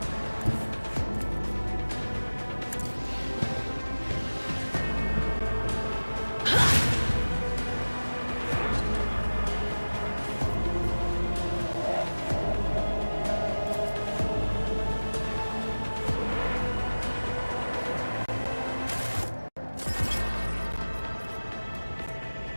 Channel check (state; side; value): inverted; both; correlation -1.00